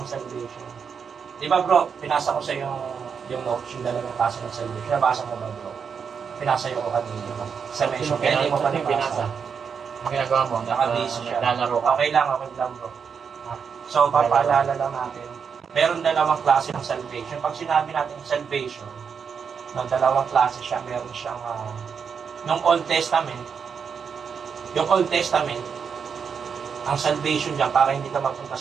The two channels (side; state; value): left; quieter; 6.5 dB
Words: salvation. Di ba bro, pinasa ko sa iyo yung notes, yung dalawang klase ng salvation. Nabasa mo ba bro? Pinasa ko kanina. Salvation, kaya hindi mo pa nabasa. Ang ginagawa mo, Nakabase siya. naglalaro ka. Okay lang bro. So, papaalala lang natin, meron dalawang klase ng salvation. Pag sinabi natin salvation, no, dalawang klase siya, meron siyang nung Old Testament, yung Old Testament, ang salvation dyan para hindi ka mapunta